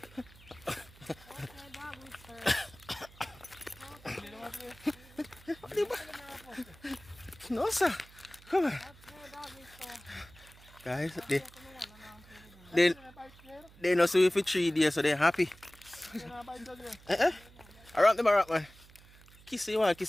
No, sir. Come on. Guys, they know see you for 3 days, so they're happy. Around them, man. Kiss you want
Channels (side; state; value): right; noise; hum, 23 dB below the sound